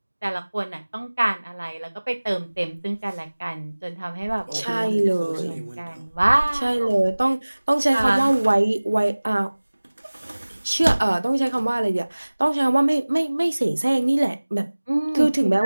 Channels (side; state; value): both; inverted; correlation -1.00